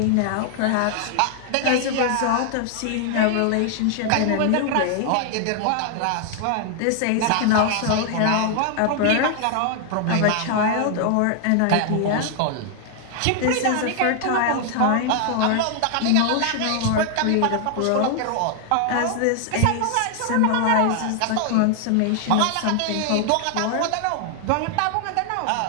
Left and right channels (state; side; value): different; both; correlation 0.00